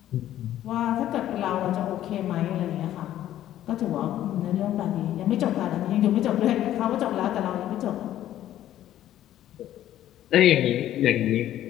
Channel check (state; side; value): quieter; right; 12.5 dB